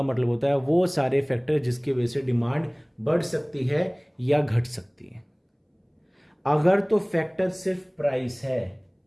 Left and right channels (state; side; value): identical; both; correlation 1.00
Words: मतलब होता है वो सारे फैक्टर जिसकी वजह से डिमांड बढ़ सकती है या घट सकती है। अगर तो फैक्टर सिर्फ प्राइस है,